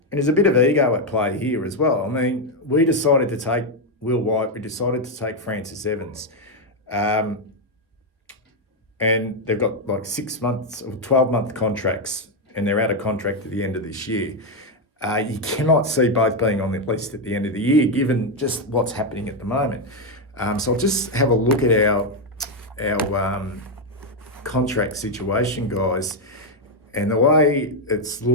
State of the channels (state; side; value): normal; both; correlation 0.04